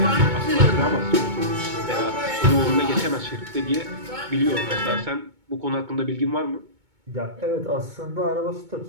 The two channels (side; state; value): left; late; 2.2 ms